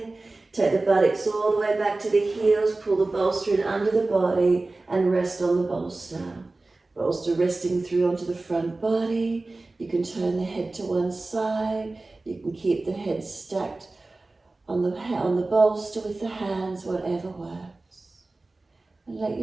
Take the buttocks all the way back to the heels, pull the bolster in under the body and rest on the bolster. Bolster resting through onto the front body. You can turn the head to one side. You can keep the head stacked on the bolster with the hands, whatever works. And let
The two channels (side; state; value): left; quieter; 3.2 dB